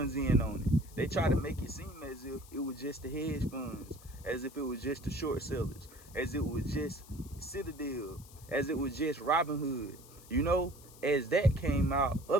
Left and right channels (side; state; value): left; noise; hiss, 21 dB below the sound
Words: in on it. They try to make it seem as if it was just the hedge funds, as if it was just the short sellers, as it was just Citadel, as it was just Robinhood. You know, as that came out,